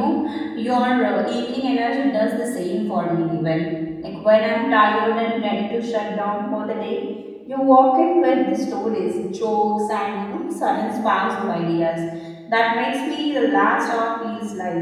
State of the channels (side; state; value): both; identical; correlation 1.00